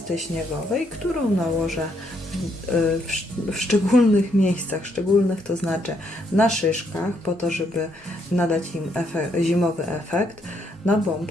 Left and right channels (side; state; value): both; normal; correlation 0.73